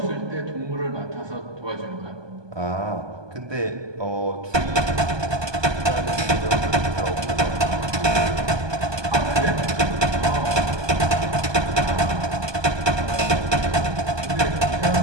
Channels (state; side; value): late; left; 1.2 ms